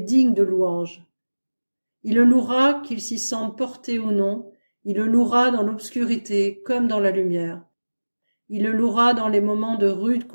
de louange. Il le louera qu'il s'y sente porté ou non, il le louera dans l'obscurité comme dans la lumière. Il le louera dans les moments de rude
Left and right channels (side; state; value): both; inverted; correlation -1.00